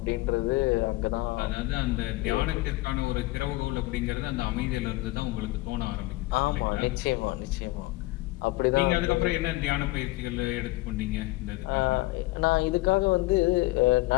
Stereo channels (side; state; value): right; quieter; 20.2 dB